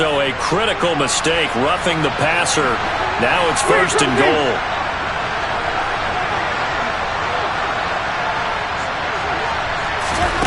a critical mistake, roughing the passer. Now it's 1st and goal.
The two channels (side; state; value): both; identical; correlation 1.00